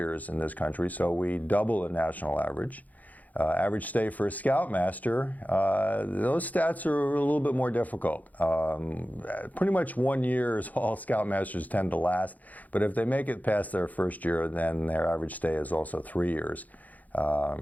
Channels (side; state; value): right; late; 0.079 ms